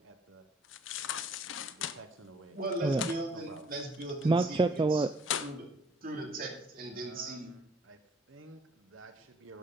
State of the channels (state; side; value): normal; both; correlation 0.58